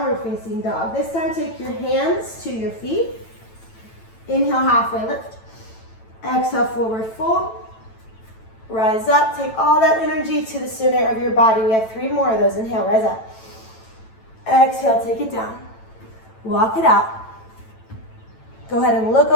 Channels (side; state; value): right; late; 9.0 ms